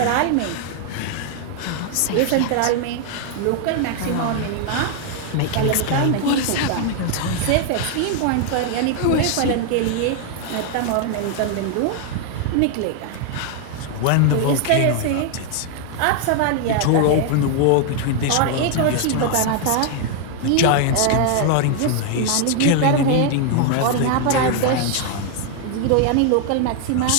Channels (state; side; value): different; both; correlation 0.00